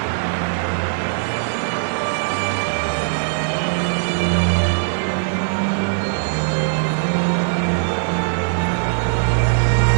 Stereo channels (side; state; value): left; silent; digital silence